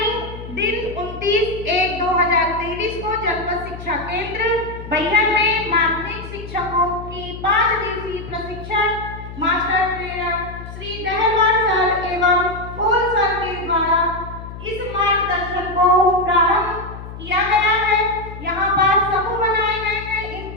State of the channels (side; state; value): left; noise; hum, 12 dB below the sound